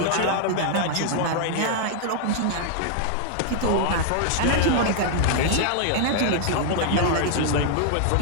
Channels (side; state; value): both; different; correlation -0.01